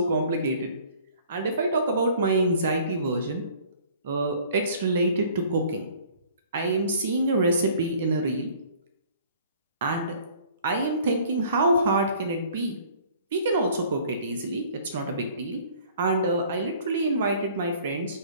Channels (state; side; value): inverted; both; correlation -0.53